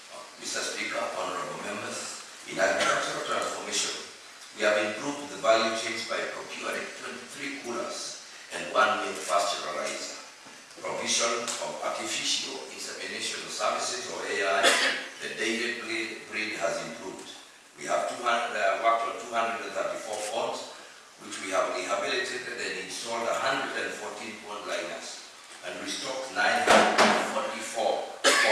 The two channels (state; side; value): identical; both; correlation 1.00